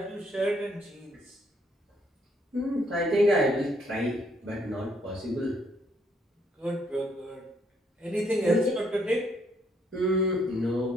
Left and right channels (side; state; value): both; normal; correlation 0.70